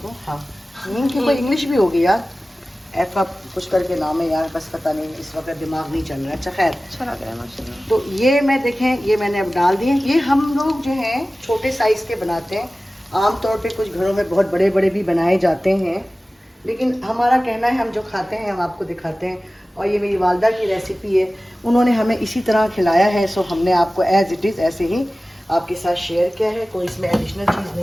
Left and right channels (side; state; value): both; normal; correlation 0.97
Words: हाँ हींग की कोई इंग्लिश भी होगी यार, ऐसा कुछ करके नाम है यार, बस पता नहीं, इस वक्त दिमाग नहीं चल रहा है। अच्छा खैर, अच्छा लग रहा है माशाल्लाह। तो ये मैं देखें, ये मैंने अब डाल दिए। ये हम लोग जो हैं छोटे साइज़ के बनाते हैं, आमतौर पे कुछ घरों में बहुत बड़े बड़े भी बनाए जाते हैं, लेकिन हमारा कहना है हम जो खाते हैं हम आपको दिखाते हैं। और ये मेरी वालदा की रेसिपी है, उन्होंने हमें इसी तरह खिलाया है, सो हमने आपको एज़ इट इज़ ऐसे ही आपके साथ शेयर किया है। कोई इसमें एडिशनल चीज़